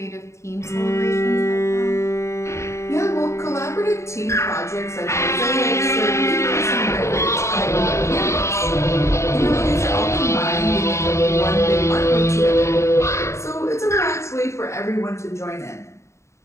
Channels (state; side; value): late; right; 0.14 ms